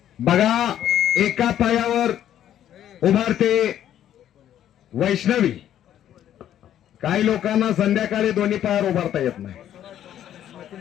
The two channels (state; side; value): quieter; right; 11.0 dB